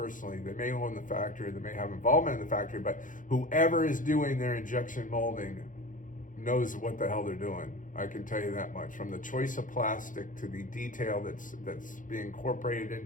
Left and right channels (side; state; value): right; late; 0.38 ms